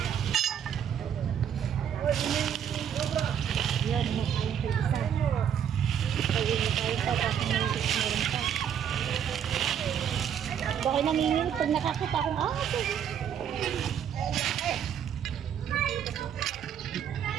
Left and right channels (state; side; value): quieter; left; 8.7 dB